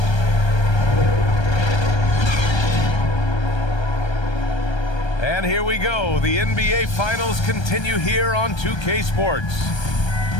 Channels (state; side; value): late; right; 1.3 ms